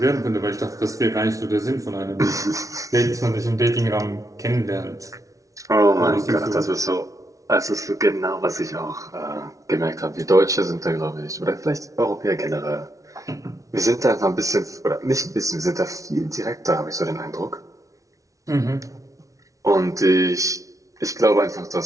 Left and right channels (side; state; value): left; late; 0.16 ms